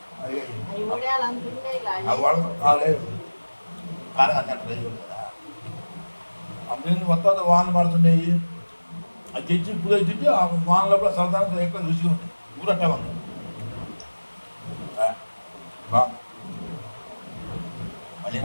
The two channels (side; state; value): both; inverted; correlation -1.00